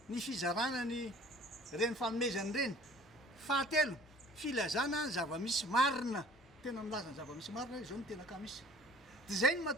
ny fizarana ny reny fanomezany reny. Fahatelo, filazana ny zava-misy marina. Tena milaza ny zava-misy marina, izao no tena ka misy. Dia izay no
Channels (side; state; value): both; normal; correlation 0.49